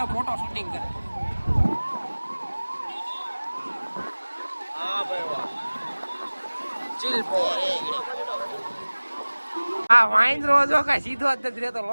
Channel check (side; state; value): both; inverted; correlation -1.00